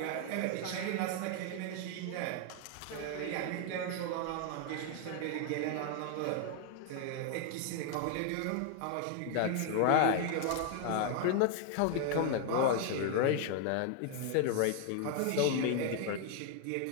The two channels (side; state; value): both; different; correlation 0.01